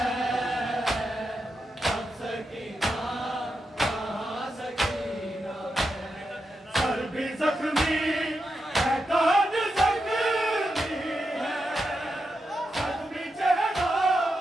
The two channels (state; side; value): normal; both; correlation 0.87